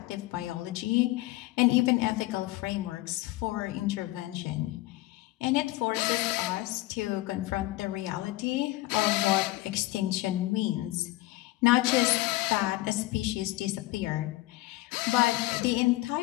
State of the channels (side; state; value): right; quieter; 18.6 dB